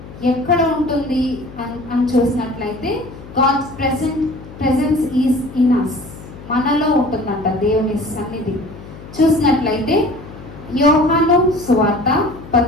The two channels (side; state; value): left; noise; hum, 16 dB below the sound